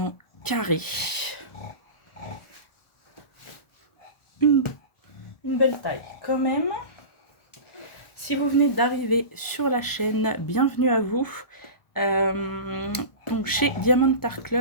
carré. Une belle taille quand même. Si vous venez d'arriver sur la chaîne, bienvenue à vous. Donc chez Diamond Art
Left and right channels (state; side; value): late; right; 1.4 ms